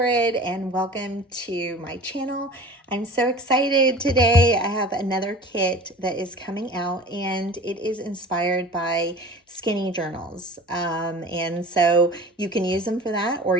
and welcome to my channel. I'm so excited today. I have another kit that is coming out and it is inspired by skinny journals. And so you can use them for that or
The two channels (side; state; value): both; normal; correlation 0.40